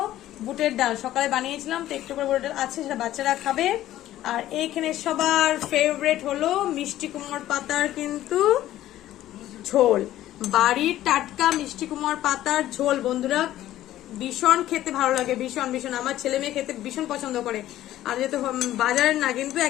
বুটের ডাল, সকালে বানিয়েছিলাম, তো একটু করে বুটের ডাল আছে, সেটা বাচ্চারা খাবে। আর এইখানে সবার ফেভারিট হলো মিষ্টি কুমড়োর পাতার কিন্তু ঝোল, বাড়ির টাটকা মিষ্টি কুমড়োর পাতার ঝোল। বন্ধুরা ভীষণ খেতে ভালো লাগে, ভীষণ ভীষণ। আমার ছেলে মেয়ে খেতে ভীষণ পছন্দ করে। আর যেহেতু বাজারের না, কিন্তু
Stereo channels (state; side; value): quieter; right; 13.7 dB